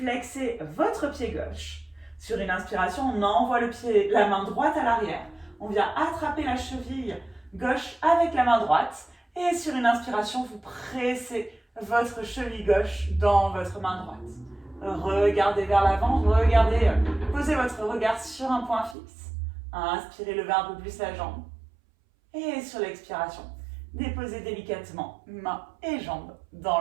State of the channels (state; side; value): drops out; left; at 18.9 s